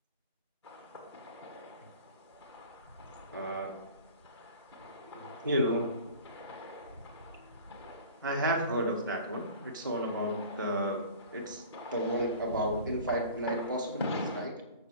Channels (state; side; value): inverted; both; correlation -0.41